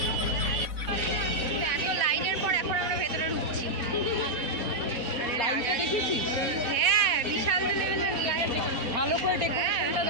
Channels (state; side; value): late; left; 4.0 ms